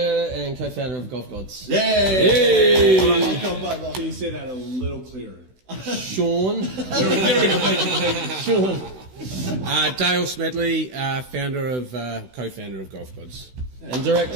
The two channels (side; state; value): left; late; 16 ms